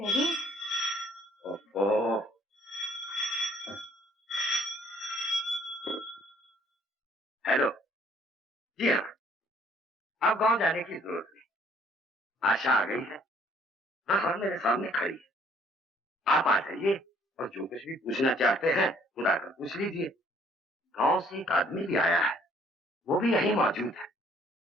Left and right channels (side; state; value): both; normal; correlation 0.61